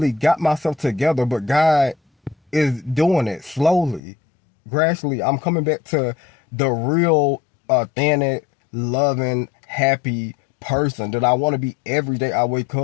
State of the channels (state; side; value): drops out; right; at 4.0 s